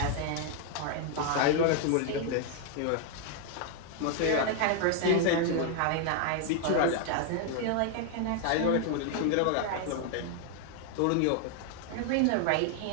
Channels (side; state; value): both; different; correlation 0.00